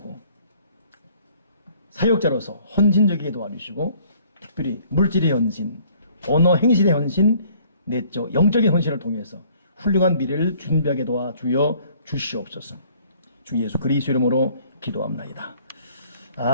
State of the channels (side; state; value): both; inverted; correlation -0.58